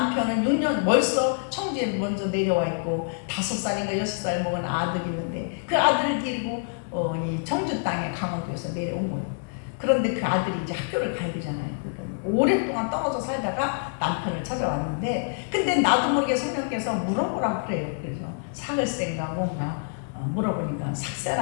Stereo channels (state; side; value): silent; right; 61 dB below the other